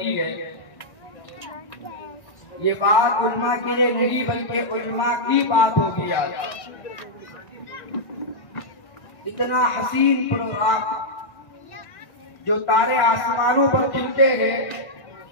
है। ये बात उल्मा के लिए नहीं बल्कि उल्मा की बात होगी। आज इतना हसीन प्रोग्राम जो तारे आसमानों पर खिलते हैं,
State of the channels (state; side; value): late; right; 1.7 ms